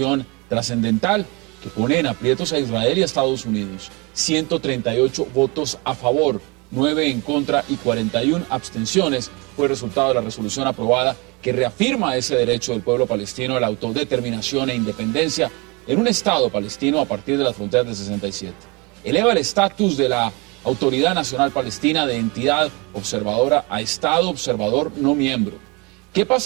trascendental que pone en aprietos a Israel y a Estados Unidos. 138 votos a favor, 9 en contra y 41 abstenciones fue el resultado de la resolución aprobada que reafirma ese derecho del pueblo palestino a la autodeterminación e independencia en un Estado palestino a partir de las fronteras del 67. Eleva el estatus de la Autoridad Nacional Palestina de entidad observadora a Estado observador no miembro. ¿Qué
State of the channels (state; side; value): quieter; left; 28.2 dB